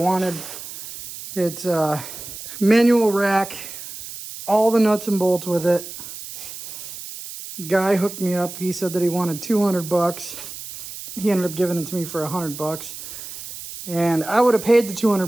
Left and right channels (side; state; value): right; noise; hiss, 12 dB below the sound